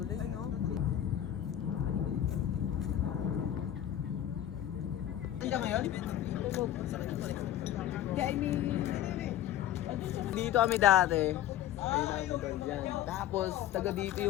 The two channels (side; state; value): right; quieter; 11.9 dB